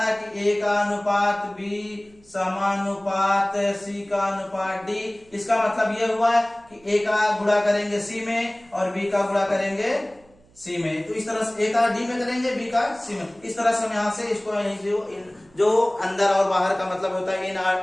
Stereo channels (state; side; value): noise; right; hum, 30 dB below the sound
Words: कि a का अनुपात b समानुपात c का अनुपात d, इसका मतलब यह हुआ कि a का गुणा करेंगे c में और b का गुणा करेंगे c में। तो इस तरह से a का d में करेंगे, b का c में। इस तरह से हम यहाँ से इसको जो अंदर और बाहर का मतलब होता है,